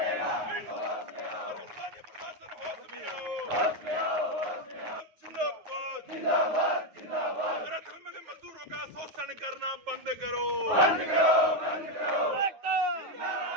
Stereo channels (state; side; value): late; left; 9.3 ms